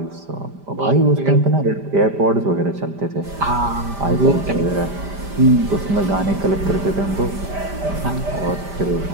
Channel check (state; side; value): late; left; 5.0 ms